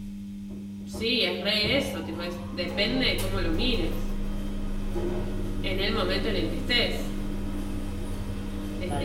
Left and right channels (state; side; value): identical; both; correlation 1.00